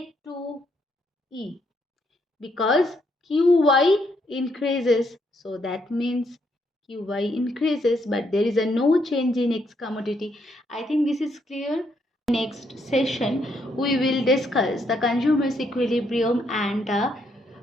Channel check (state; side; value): normal; both; correlation 0.75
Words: because QY increases. So that means QY increases, but there is a no change in X commodity. I think this is clear. Next session, we will discuss the consumer's equilibrium and the